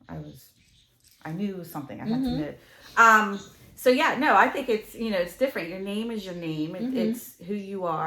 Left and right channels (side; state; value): both; identical; correlation 1.00